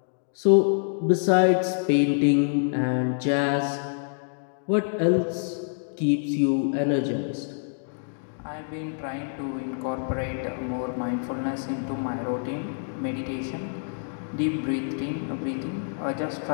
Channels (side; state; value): right; silent; digital silence